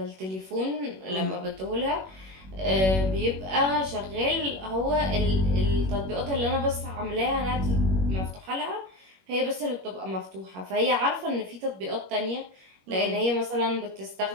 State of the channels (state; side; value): late; left; 21 ms